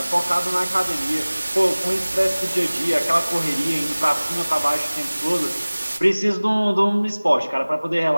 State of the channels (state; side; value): inverted; both; correlation -1.00